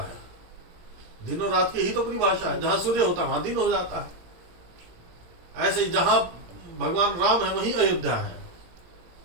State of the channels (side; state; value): left; late; 18 ms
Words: दिन और रात की ही तो परिभाषा है। जहां सूर्य होता है वहां दिन हो जाता है। ऐसे ही जहां भगवान राम है वहीं अयोध्या है।